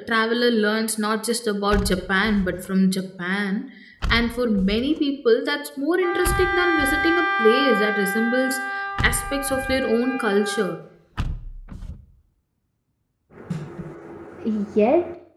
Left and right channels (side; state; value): both; identical; correlation 1.00